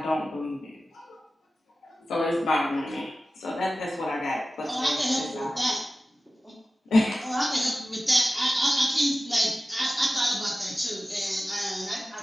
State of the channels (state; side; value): normal; both; correlation 0.95